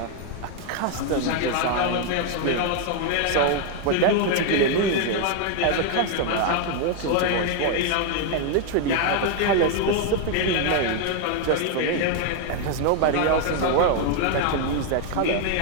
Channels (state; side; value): different; both; correlation 0.00